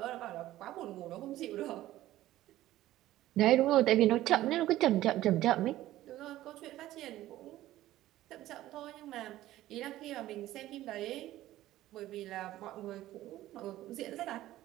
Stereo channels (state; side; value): quieter; left; 14.9 dB